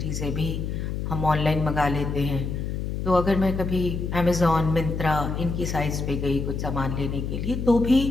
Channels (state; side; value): noise; left; hum, 3 dB below the sound